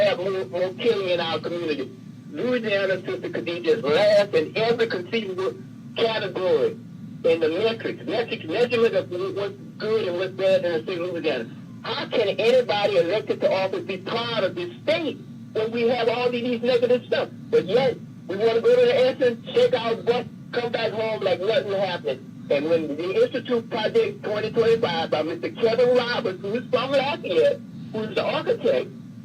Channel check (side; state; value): both; identical; correlation 1.00